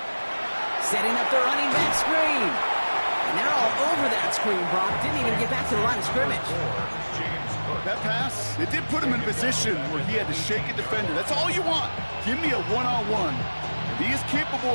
Setting up the running back screen. And they're all over that screen, Brock. Didn't even get back to the line of scrimmage. That pass, it did put him in a position where he had to shake a defender. That's all you want. Give me a one-on-one. And he is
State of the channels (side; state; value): both; inverted; correlation -1.00